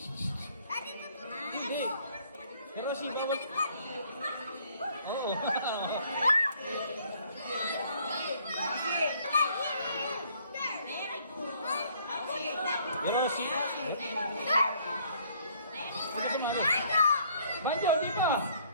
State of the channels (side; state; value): both; inverted; correlation -0.62